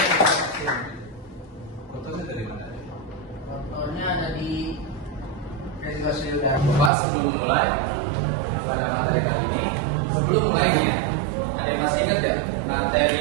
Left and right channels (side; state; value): left; drops out; at 6.9 s